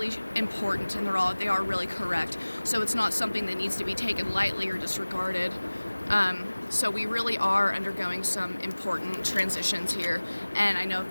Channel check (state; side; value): inverted; both; correlation -1.00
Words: important, and they are really correct. So it's not something that needs to be taken lightly or disregarded. So we really are undergoing some important transitions here, and I know